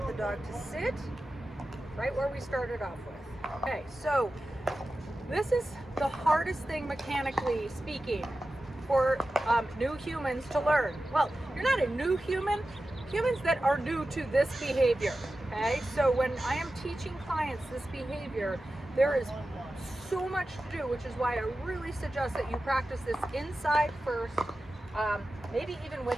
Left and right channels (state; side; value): normal; both; correlation 0.93